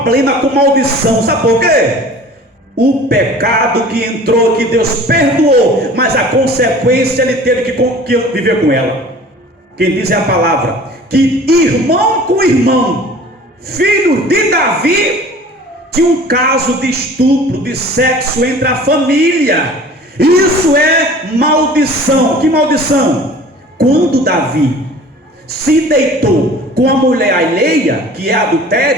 com maldição. Sabe por quê? O pecado que entrou, que Deus perdoou, mas a consequência ele teve que viver com ela. Quem diz é a palavra, que irmão com irmão, filho de Davi, tinha um caso de estupro, de sexo entre a família. Isso é maldição. Que maldição? Quando Davi se deitou com a mulher alheia, que é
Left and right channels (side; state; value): both; normal; correlation 0.45